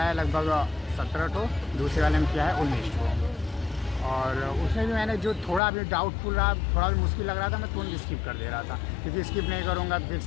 लगभग 17 ठो, दूसरे वाले में किया है 19 ठो। और उसमें भी मैंने जो थोड़ा भी डाउटफुल रहा, थोड़ा भी मुश्किल लग रहा था, मैं तुरंत स्किप कर दे रहा था, क्योंकि स्किप नहीं करूँगा तो फिर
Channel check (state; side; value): drops out; right; at 5.6 s